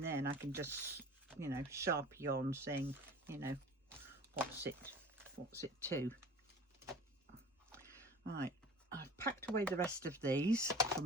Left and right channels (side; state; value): both; normal; correlation 0.42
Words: and I can just, you know, Sharpie on saying, you know, what's it to. Right, I've packed away the rest of these